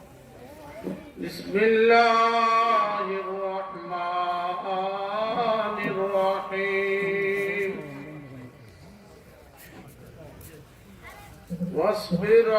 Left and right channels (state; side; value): identical; both; correlation 1.00